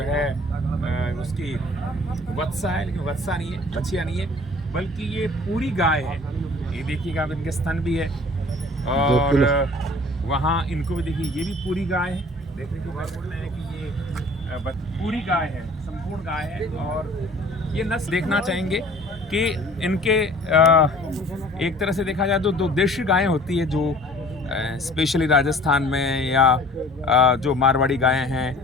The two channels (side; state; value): both; normal; correlation 0.49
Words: है उसकी वत्सा है, लेकिन वत्सा नहीं है, बछिया नहीं है, बल्कि ये पूरी गाय है। ये देखिएगा, आप इनके स्तन भी है। और वहाँ इनको भी देखिए, ये भी पूरी गाय है। देखने को बात बोल रहे हैं कि ये पूरी गाय है, संपूर्ण गाय है। और ये नस्ल देखना चाहेंगे कि इनके एक तरह से देखा जाए तो दो देशी गायें होती है, जो स्पेशली राजस्थान में या जो मारवाड़ी गायें